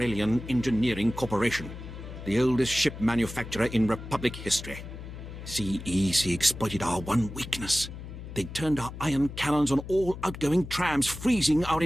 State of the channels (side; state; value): left; noise; hum, 11 dB below the sound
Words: Engineering Corporation, the oldest ship manufacturer in Republic history. CEC exploited our one weakness. They turned our ion cannons on all outgoing trams, freezing our